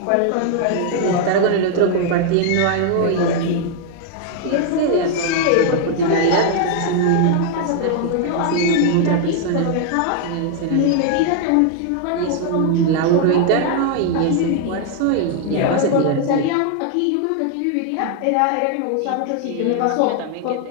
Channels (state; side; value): different; both; correlation 0.00